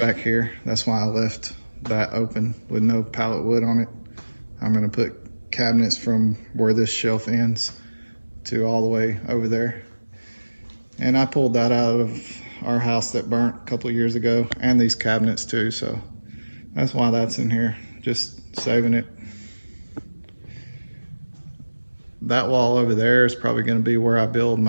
here. That's why I left that open with no pallet wood on it. I'm going to put cabinets from where this shelf ends to all the way over there. And I pulled that out of our house that burnt a couple of years ago, and these cabinets too, so that's why that's in here, just saving it. That wall over there is probably going to be where I build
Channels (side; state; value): both; inverted; correlation -1.00